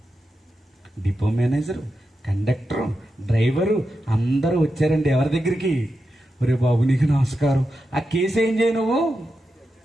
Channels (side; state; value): both; normal; correlation 0.89